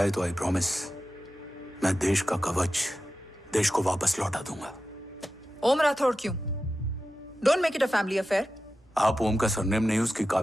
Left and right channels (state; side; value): normal; both; correlation 0.92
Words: तो आई प्रॉमिस मैं देश का कवच देश को वापस लौटा दूंगा। ओम राठौड़ क्यों? Don't make it a family affair. आप ओम का सरनेम नहीं, उसकी